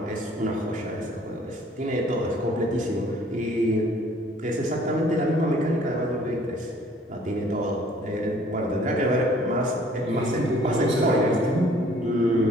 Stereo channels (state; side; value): normal; both; correlation 0.57